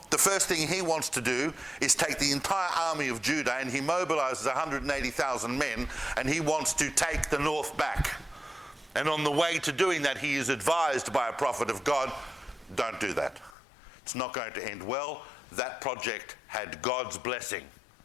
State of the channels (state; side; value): drops out; right; at 13.6 s